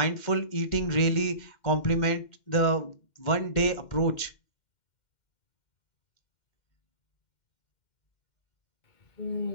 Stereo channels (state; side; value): late; right; 2.1 ms